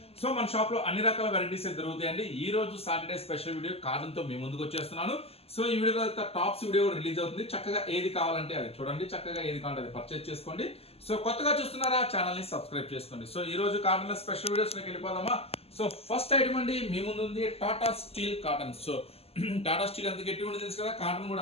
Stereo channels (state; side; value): late; right; 0.29 ms